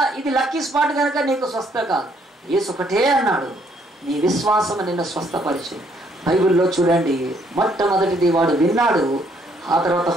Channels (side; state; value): both; normal; correlation 0.68